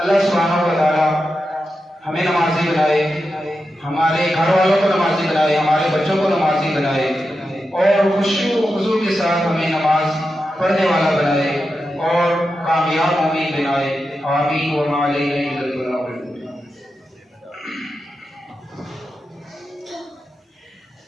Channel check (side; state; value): both; normal; correlation 0.89